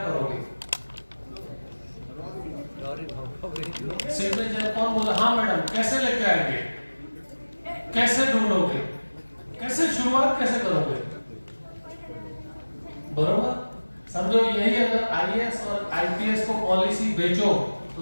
करोगे? सिग्नेचर कौन बोला? हाँ मैडम, कैसे लेके आएंगे, कैसे ढूंढोगे, कैसे शुरुआत कैसे करोगे? बरोबर? समझो यही अगर आईएएस और आईपीएस को पॉलिसी बेचो तो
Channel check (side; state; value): both; inverted; correlation -1.00